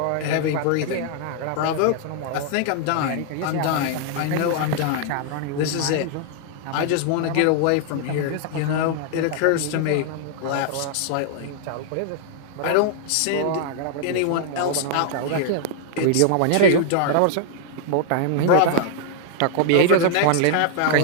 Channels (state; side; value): different; both; correlation 0.00